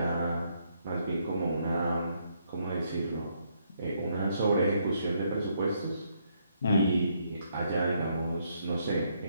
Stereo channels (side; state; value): both; inverted; correlation -0.74